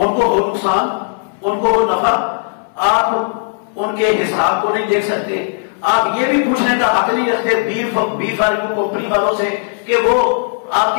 کو وہ نقصان, ان کو وہ نفع, آپ ان کے حساب کو نہیں دیکھ سکتے. آپ یہ بھی پوچھنے کا حق نہیں رکھتے B4U کمپنی والوں سے کہ وہ آپ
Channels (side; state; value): right; silent; 65 dB below the other